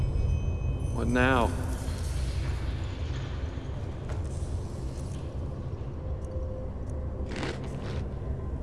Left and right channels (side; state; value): both; identical; correlation 1.00